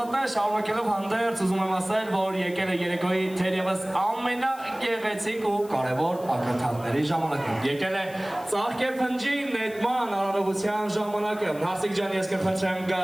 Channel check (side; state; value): left; noise; hiss, 21 dB below the sound